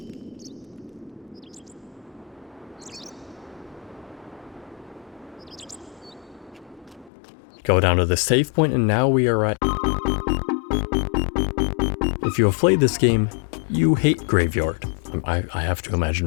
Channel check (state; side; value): drops out; right; at 7.1 s